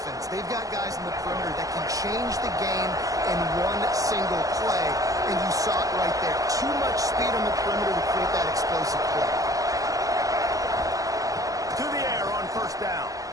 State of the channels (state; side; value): late; left; 0.17 ms